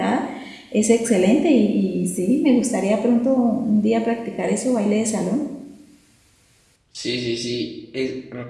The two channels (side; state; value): both; identical; correlation 1.00